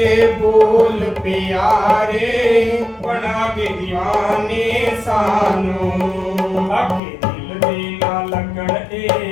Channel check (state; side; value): drops out; right; at 7.0 s